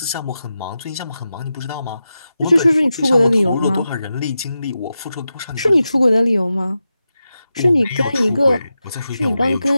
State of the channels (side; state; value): both; inverted; correlation -0.91